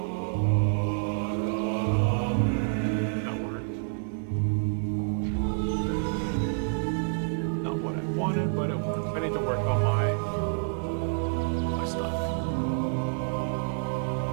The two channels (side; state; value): left; silent; digital silence